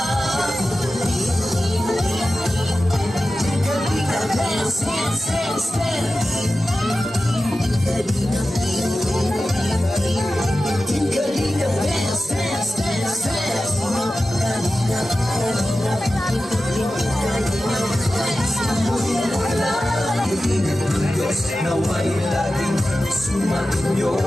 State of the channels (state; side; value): normal; both; correlation 0.94